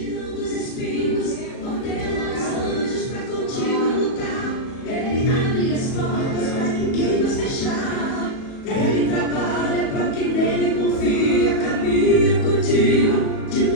os espinhos, ordena os anjos para contigo lutar. Ele abre as portas para quem nos fechar. Ele trabalha para quem nele confia. Caminha contigo de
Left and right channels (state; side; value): late; right; 37 ms